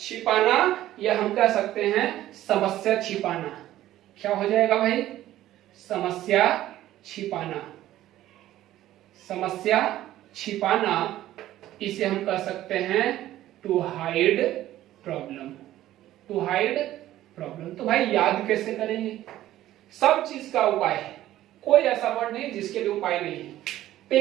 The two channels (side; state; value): left; quieter; 14.0 dB